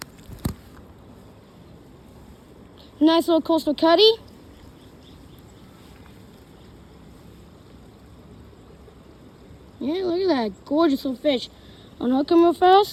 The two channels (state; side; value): identical; both; correlation 1.00